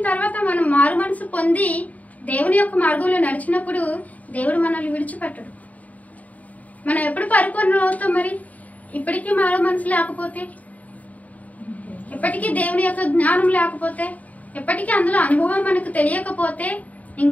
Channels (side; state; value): right; late; 0.072 ms